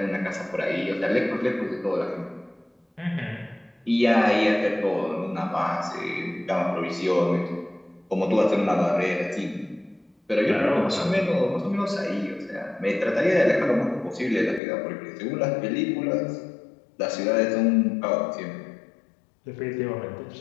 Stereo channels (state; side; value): drops out; right; at 14.6 s